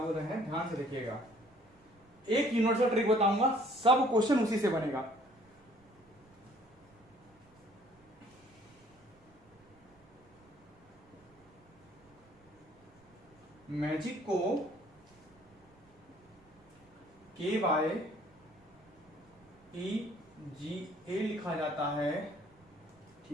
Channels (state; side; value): noise; right; rumble, 30 dB below the sound